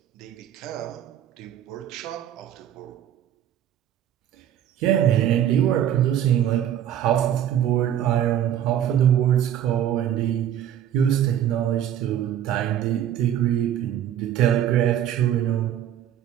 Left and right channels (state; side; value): quieter; left; 10.6 dB